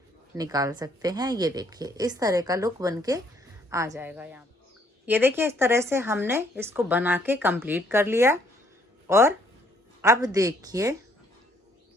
निकाल सकते हैं। ये देखिए इस तरह का लुक बन के आ जाएगा। यहाँ ये देखिए इस तरह से हमने इसको बना के कंप्लीट कर लिया। और अब देखिए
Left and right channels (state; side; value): normal; both; correlation 0.66